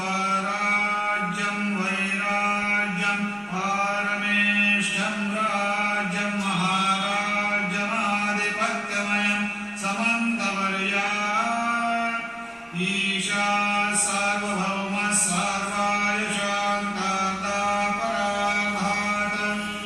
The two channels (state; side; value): identical; both; correlation 1.00